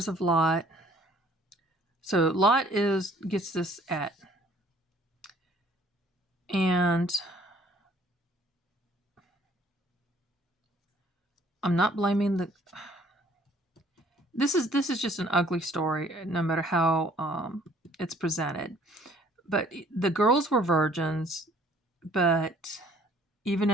of Lot. So Lot gets this at. And I'm not blaming this is just an ugly story, no matter how it's presented. But the girls were virgins, but even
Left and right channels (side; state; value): both; normal; correlation 0.58